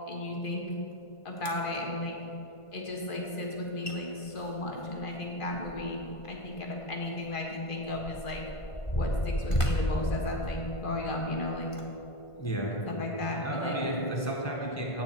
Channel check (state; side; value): late; right; 1.5 ms